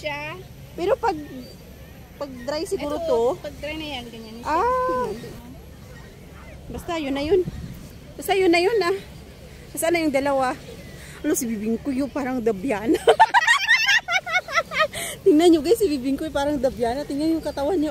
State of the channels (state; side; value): identical; both; correlation 1.00